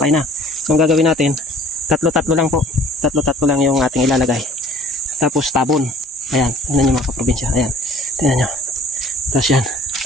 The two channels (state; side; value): normal; both; correlation 0.51